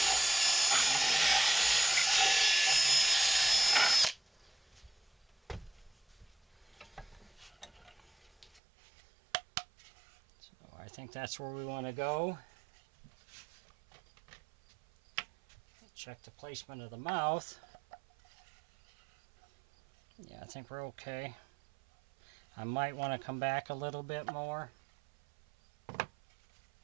So I think that's where we want to go. Check the placement of the mouth. Yeah, I think we're okay. I might want to come back a little bit more.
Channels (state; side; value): drops out; left; at 8.6 s